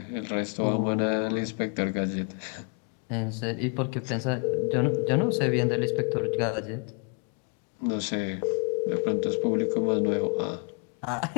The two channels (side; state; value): right; quieter; 38.6 dB